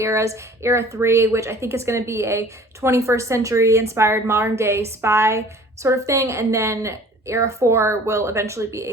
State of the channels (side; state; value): both; normal; correlation 0.48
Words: Era 3, which I think is going to be a 21st century inspired modern day spy sort of thing. And then Era 4 will eventually be a